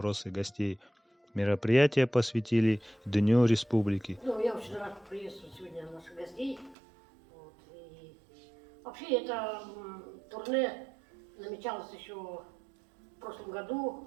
гостей. Мероприятие посвятили Дню Республики. Я очень рад приветствовать сегодня наших гостей. И вообще это турне намечалось еще в прошлом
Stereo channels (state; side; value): drops out; left; at 6.8 s